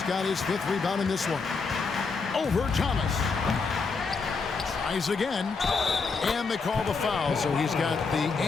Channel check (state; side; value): quieter; right; 4.7 dB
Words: got his 5th rebound in this one. Over Thomas. Tries again. And they call the foul, so he's got the